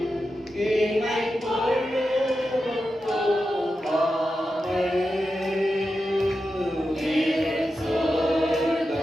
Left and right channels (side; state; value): both; normal; correlation 0.90